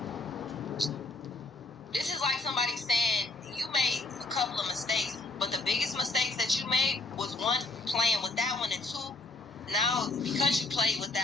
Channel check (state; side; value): quieter; right; 3.1 dB